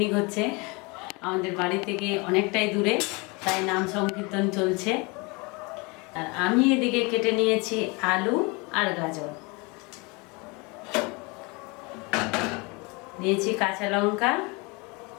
হচ্ছে আমাদের বাড়ি থেকে অনেকটাই দূরে, তাই নাম সংকীর্তন চলছে। আর আমি এদিকে কেটে নিয়েছি আলু আর গাজর, নিয়েছি কাঁচা লঙ্কা,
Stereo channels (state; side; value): quieter; right; 28.1 dB